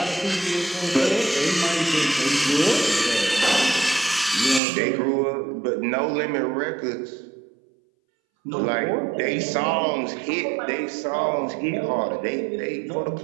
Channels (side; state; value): left; drops out; at 4.6 s